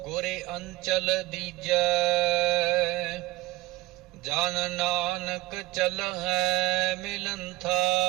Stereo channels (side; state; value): left; quieter; 18.7 dB